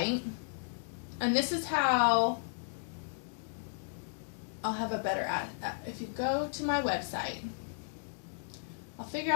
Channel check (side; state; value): right; silent; 55 dB below the other